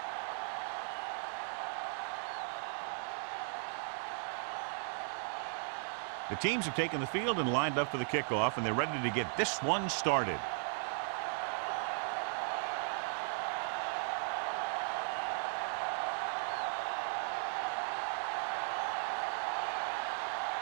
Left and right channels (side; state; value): left; silent; 53 dB below the other